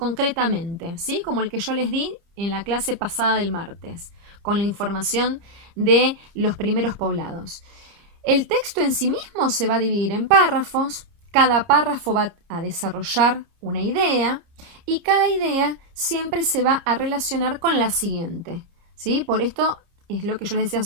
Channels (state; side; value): late; left; 30 ms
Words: ¿sí?, como el que yo les di en la clase pasada del martes, con la información de los primeros poblados. El texto en sí mismo se va a dividir en párrafos, cada párrafo va a desarrollar una idea y cada idea siempre se va a relacionar con la siguiente, ¿sí? Por esto es lo que yo les decía